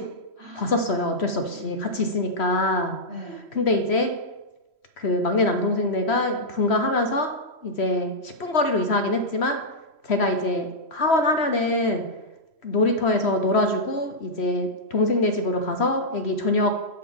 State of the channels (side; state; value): right; late; 3.1 ms